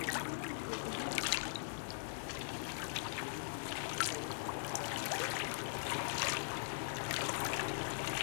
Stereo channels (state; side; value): silent; right; digital silence